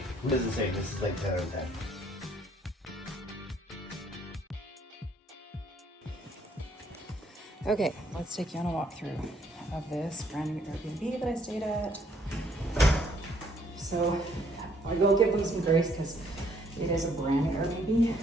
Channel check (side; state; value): both; normal; correlation 0.66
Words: What does it say? This is like 10 out of 10. Okay, let's take you on a walkthrough of this brand new Airbnb that I stayed at. So I will give them some grace because it is a brand new Airbnb.